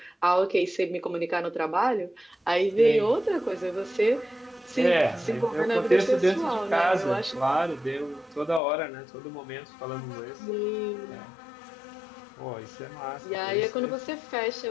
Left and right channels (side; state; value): right; drops out; at 8.6 s